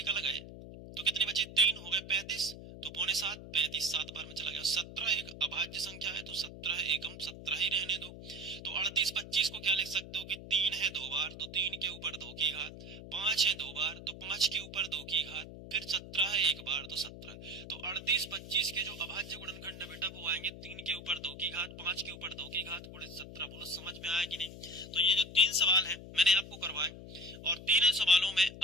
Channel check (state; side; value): noise; left; hum, 13 dB below the sound